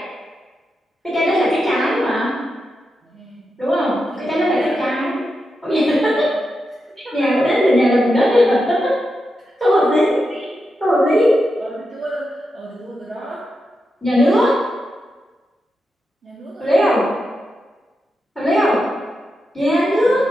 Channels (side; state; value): both; normal; correlation 0.88